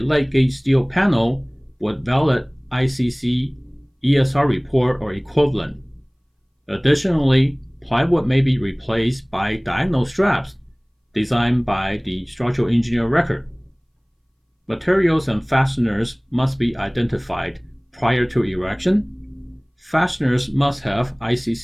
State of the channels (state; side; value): identical; both; correlation 1.00